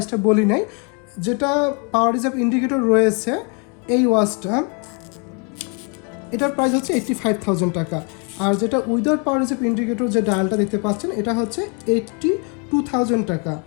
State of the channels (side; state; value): right; quieter; 34.8 dB